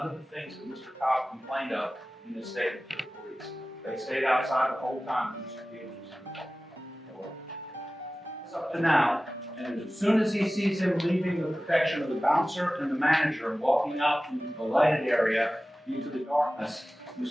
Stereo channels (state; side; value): normal; both; correlation 0.96